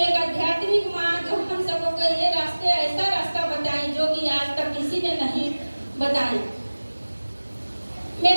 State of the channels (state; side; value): inverted; both; correlation -1.00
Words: एक आध्यात्मिक माँ जो हम सबको ये रास्ते, ऐसा रास्ता बताई जो कि आज तक किसी ने नहीं बताई।